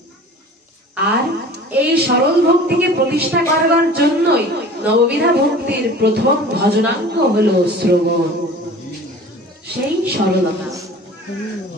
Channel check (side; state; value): both; normal; correlation 0.42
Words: আর এই সরল ভক্তিকে প্রতিষ্ঠা করবার জন্যই নববিধা ভক্তির প্রথম ভজনাঙ্গ হলো শ্রবণ, সেই সরলতা।